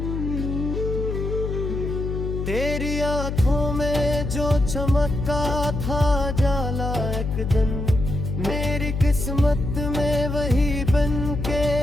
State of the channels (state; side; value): noise; left; hum, 3 dB below the sound